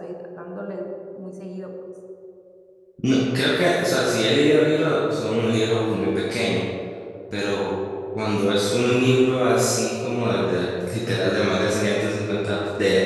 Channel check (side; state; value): both; identical; correlation 1.00